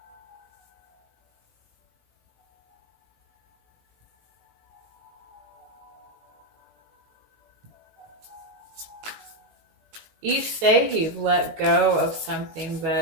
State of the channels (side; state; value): left; late; 19 ms